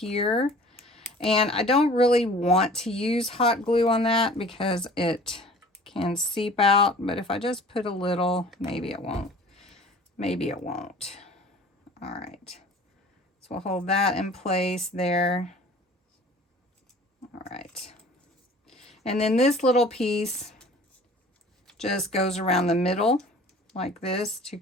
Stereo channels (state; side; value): normal; both; correlation 0.47